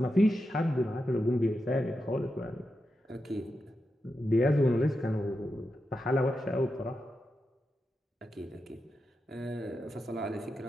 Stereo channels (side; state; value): both; normal; correlation 0.88